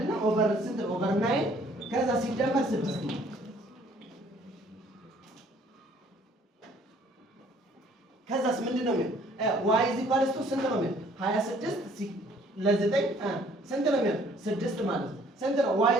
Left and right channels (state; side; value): normal; both; correlation 0.59